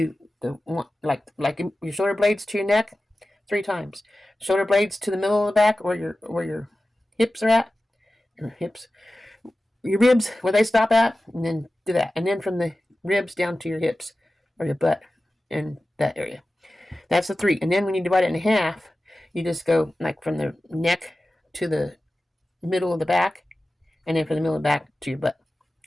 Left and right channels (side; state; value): both; normal; correlation 0.95